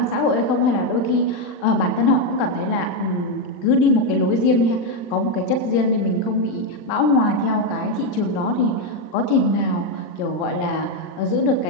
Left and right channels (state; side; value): late; right; 40 ms